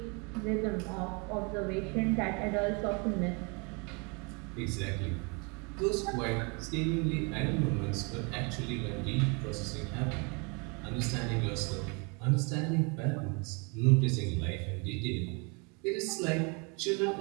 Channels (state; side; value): quieter; left; 32.4 dB